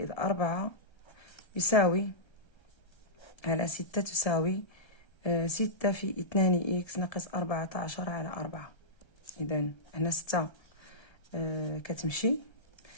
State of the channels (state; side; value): late; right; 1.7 ms